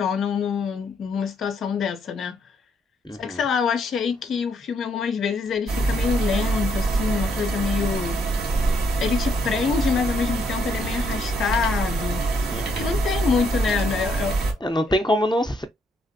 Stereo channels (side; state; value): both; normal; correlation 0.73